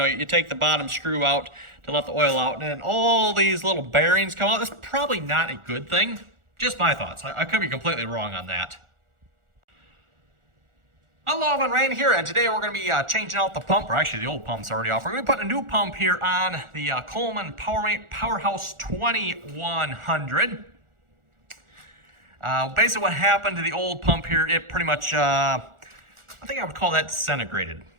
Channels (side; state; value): left; late; 1.4 ms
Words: take the bottom screw out to let the oil out, and then all these little bearings come out. That's probably not a good thing. Just my thoughts. I could be completely wrong on that. Hello, everyone, Rain here, and today we're going to be changing out the pump, or actually the old pump's already off. We're going to be putting a new pump here on the Colemn Powerhouse 2100. Basically what happened to the old pump here, it pretty much, I think I would call that disintegrated.